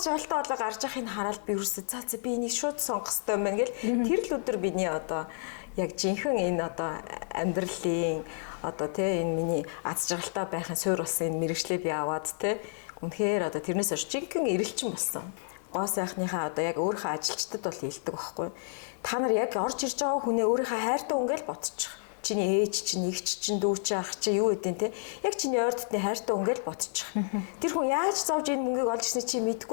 жаргалтай болоо гарч явахыг хараад би ерөөсөө за би энийг шууд сонгох хэрэгтэй юм байна гэл. Тэр л өдөр биний одоо яг жинхэнэ энэ одоо амьдралын одоо тий энэ миний аз жаргалтай байхын суурь болсон энэ мэрэгчлээ би аваад тий үнэхээр одоо тэрнээс хойш жинхэнэ эрэлчин болсон. Гоо сайхныхаа одоо яг өөрийнхөө ажилчдад бол хэлдэг байхгүй. Та нар яг орж ирж байгаа хүнээ өөрийнхөө хайртай үнгээл бодчих. Чиний ээж чинь, эгч чинь, дүү чинь, ах чинь юу гэдэг те. Яг чиний ойр дотны хайртай үнгээл бодчих. Тэр хүн яаж зовж энэ мөнгийг олж ирсний чи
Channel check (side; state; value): right; silent; 58 dB below the other